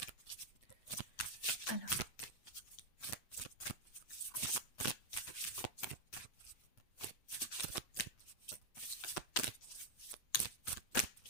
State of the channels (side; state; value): right; late; 8.1 ms